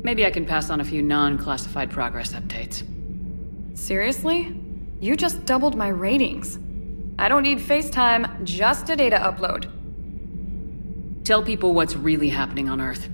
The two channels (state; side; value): inverted; both; correlation -1.00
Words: Maybe I can pass on a few non-classified progress updates. Seriously? You just doubled my ratings. I don't need FaceTime, just a data upload. Tell people what's really happening on Earth.